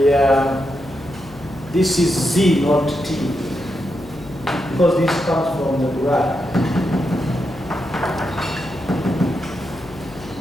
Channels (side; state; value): left; noise; hum, 21 dB below the sound